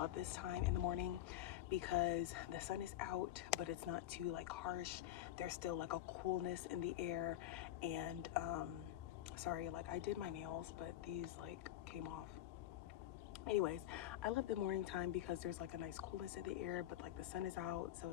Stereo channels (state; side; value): quieter; right; 13.4 dB